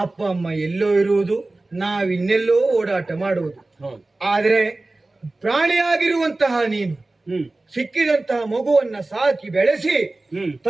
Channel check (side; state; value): left; quieter; 3.0 dB